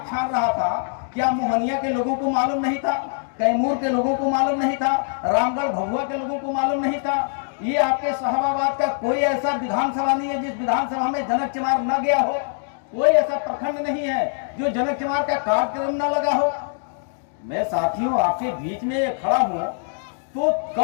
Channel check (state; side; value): silent; right; digital silence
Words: छान रहा था, क्या मोहनिया के लोगों को मालूम नहीं था? कैमूर के लोगों को मालूम नहीं था? रामगढ़ भभुआ के लोगों को मालूम नहीं था? ये आपके शाहबाद का कोई ऐसा विधानसभा नहीं है जिस विधानसभा में जनक चमार न गया हो। कोई ऐसा प्रखंड नहीं है जो जनक चमार का कार्यक्रम न लगा हो। मैं साथियों आपके बीच में खड़ा हूं तो